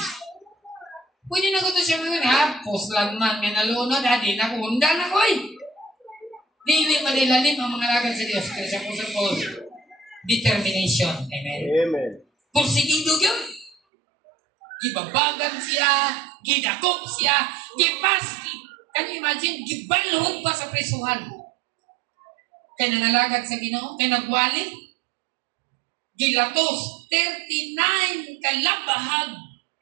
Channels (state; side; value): drops out; left; at 13.8 s